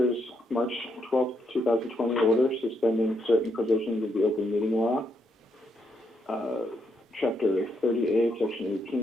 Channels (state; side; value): normal; both; correlation 0.77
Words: March 12th, 2020 order suspending certain provisions of the open meeting law, Chapter 30A, Section